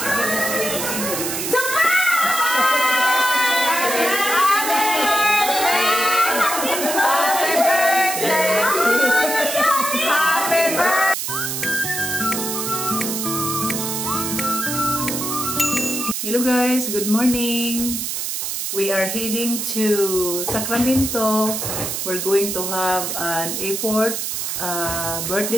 guys, good morning. We are heading to Sacramento. We're going to have an airport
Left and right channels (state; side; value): noise; right; hiss, 3 dB below the sound